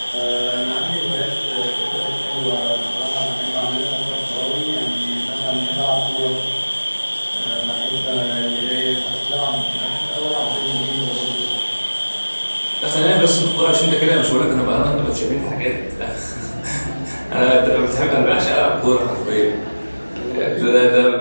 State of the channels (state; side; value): inverted; both; correlation -1.00